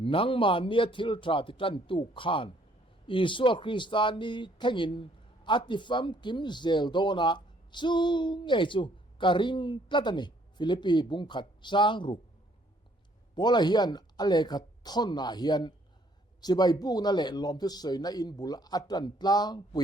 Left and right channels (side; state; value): both; normal; correlation 0.64